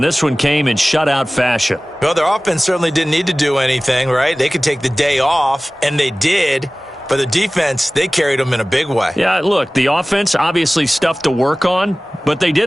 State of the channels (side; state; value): both; normal; correlation 0.98